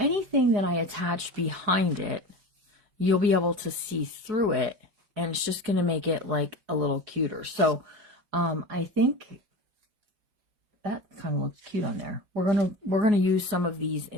that I attach behind it, you'll be able to see through it, and it's just going to make it like a little cuter. So I think that kind of looks cute on there. We're gonna use some of these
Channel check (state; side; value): late; left; 4.7 ms